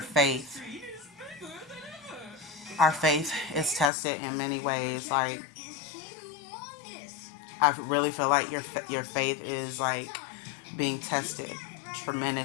faith. Our faith is tested in many ways. Like, I really feel like your faith is like being tested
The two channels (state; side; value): drops out; right; at 3.9 s